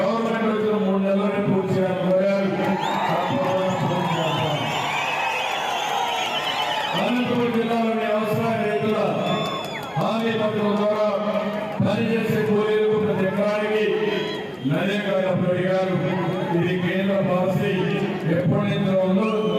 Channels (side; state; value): both; identical; correlation 1.00